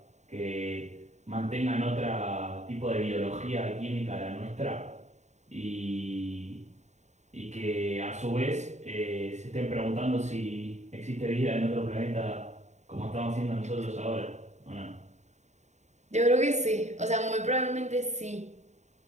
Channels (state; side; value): late; left; 0.34 ms